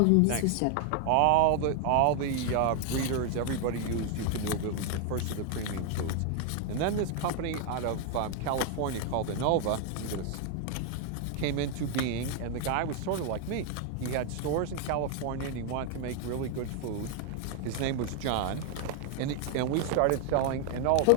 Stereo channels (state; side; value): different; both; correlation 0.01